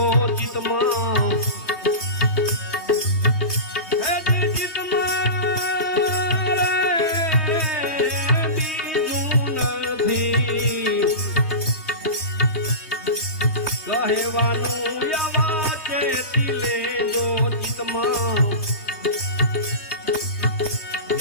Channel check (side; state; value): right; late; 3.2 ms